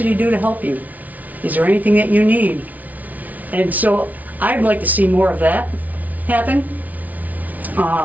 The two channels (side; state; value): left; late; 0.074 ms